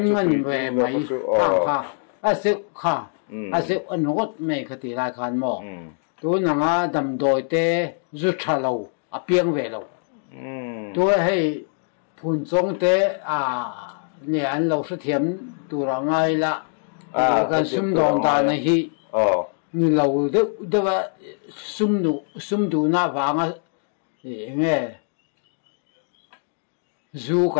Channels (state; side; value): silent; right; 63 dB below the other